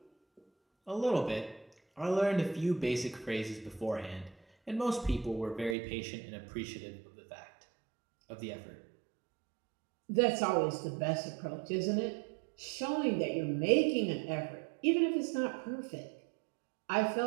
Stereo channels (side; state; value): left; drops out; at 5.8 s